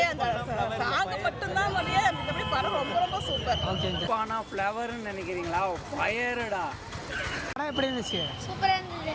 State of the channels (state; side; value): identical; both; correlation 1.00